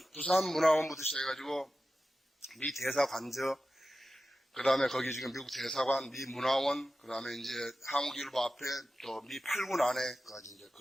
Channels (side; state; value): both; normal; correlation 0.93